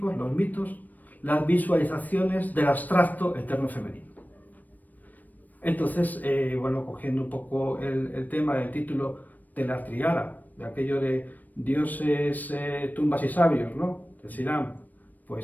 los mitos, las visualizaciones del abstracto eterno femenino. Entonces, bueno, cogiendo un poco el tema del título de la triada, de aquello de dioses, tumbas y sabios, ¿no? Decirán,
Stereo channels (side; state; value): right; late; 0.084 ms